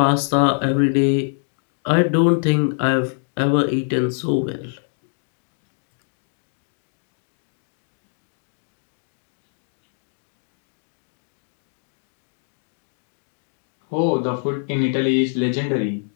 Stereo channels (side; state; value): right; silent; digital silence